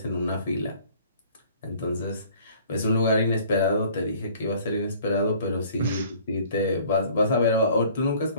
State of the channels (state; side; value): inverted; both; correlation -0.53